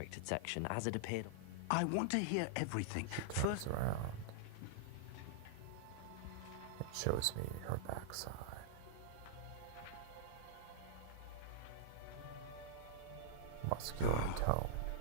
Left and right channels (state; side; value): different; both; correlation -0.02